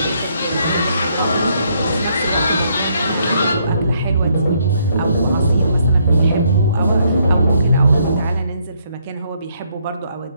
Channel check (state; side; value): inverted; both; correlation -0.71